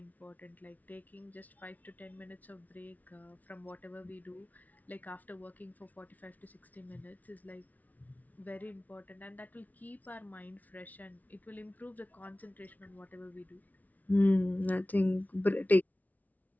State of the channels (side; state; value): right; late; 0.076 ms